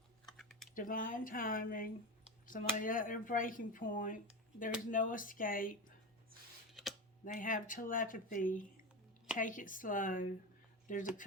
Divine timing. Somebody at their breaking point. There's no escape. They have telepathy. Take it slow. There's a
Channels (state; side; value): normal; both; correlation 0.21